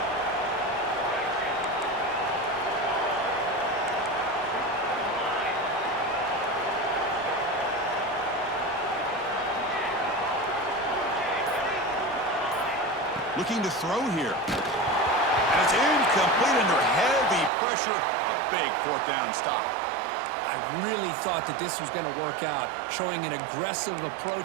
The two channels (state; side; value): drops out; left; at 17.5 s